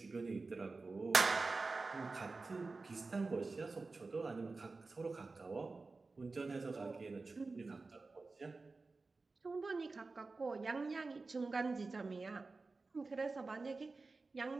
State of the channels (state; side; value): quieter; left; 3.8 dB